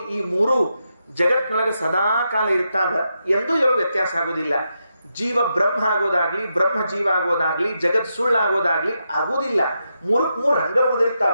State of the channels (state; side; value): inverted; both; correlation -0.85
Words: ಈ 3 ಜಗತ್ನೊಳಗೆ ಸದಾ ಕಾಲ ಇರ್ತಾವ, ಎಂದೂ ಯಾರು ವ್ಯತ್ಯಾಸ ಆಗೋದಿಲ್ಲ. ಜೀವ ಬ್ರಹ್ಮ ಆಗೋದಾಗ್ಲಿ, ಬ್ರಹ್ಮ ಜೀವ ಆಗೋದಾಗ್ಲಿ, ಜಗತ್ ಸುಳ್ಳಾಗೋದಾಗ್ಲಿ ಆಗೋದಿಲ್ಲ. 3 ಹಂಗ